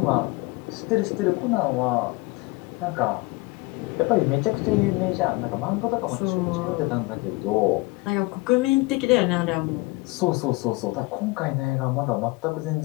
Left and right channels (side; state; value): right; quieter; 24.0 dB